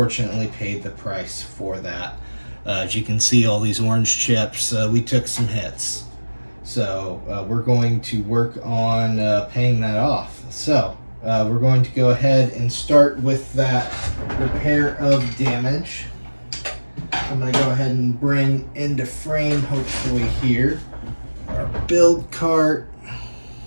paid the price for that. As you can see, all these orange chips, we took some hits. So we're going to work on paying that off. So we're going to go ahead and start with that repair of damage. I'm going to go ahead and bring into frame, hopefully here, our build cart.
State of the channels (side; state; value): both; inverted; correlation -1.00